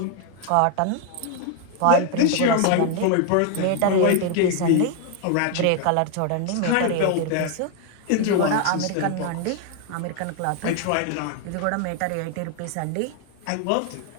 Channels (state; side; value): different; both; correlation 0.00